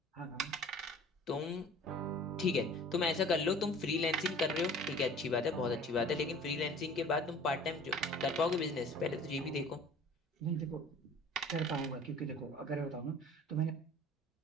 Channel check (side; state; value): both; normal; correlation 0.47